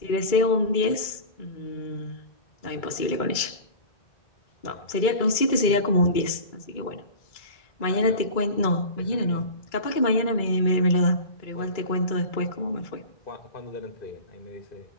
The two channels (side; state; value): right; late; 2.3 ms